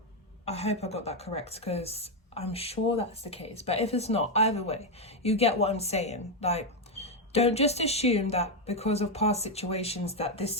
hope I got that correct, because I'm sure that's the case. But if it's not, either way, you get what I'm saying. Like, don't just assume that because of past situations that this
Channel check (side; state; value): both; normal; correlation 0.04